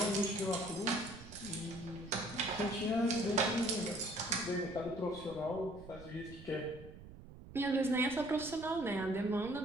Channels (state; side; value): noise; right; rumble, 16 dB below the sound